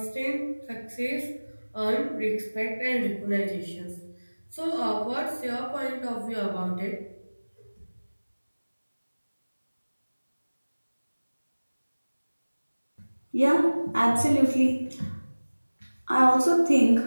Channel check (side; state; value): both; inverted; correlation -1.00